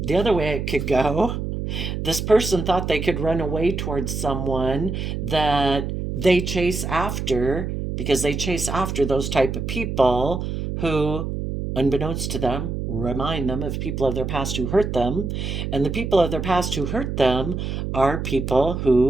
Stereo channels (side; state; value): right; noise; hum, 4 dB below the sound